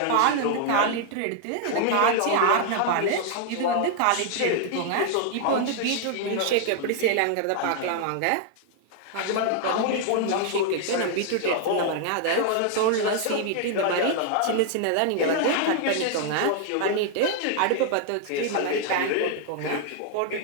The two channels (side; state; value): both; different; correlation 0.00